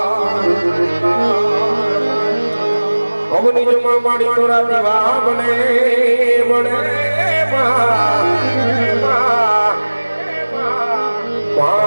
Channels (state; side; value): inverted; both; correlation -1.00